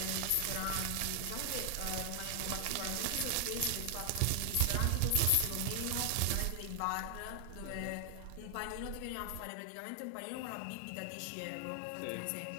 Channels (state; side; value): different; both; correlation 0.00